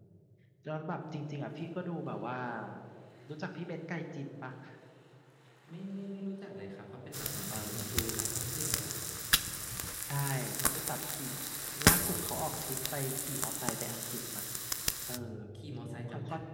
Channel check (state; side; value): identical; both; correlation 1.00